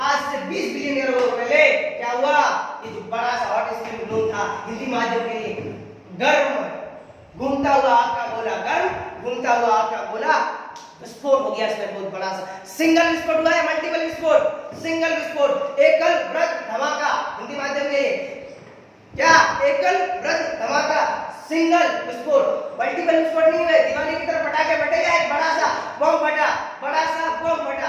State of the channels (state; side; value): identical; both; correlation 1.00